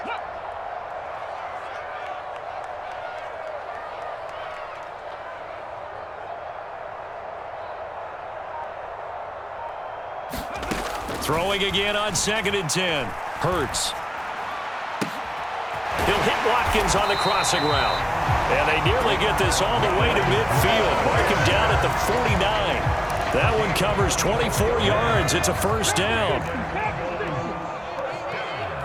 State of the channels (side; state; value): both; identical; correlation 1.00